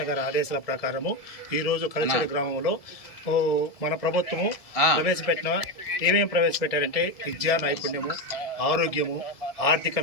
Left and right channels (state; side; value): late; right; 1.7 ms